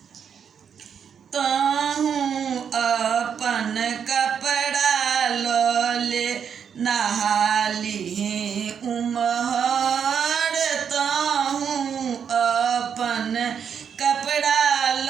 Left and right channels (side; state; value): left; quieter; 7.5 dB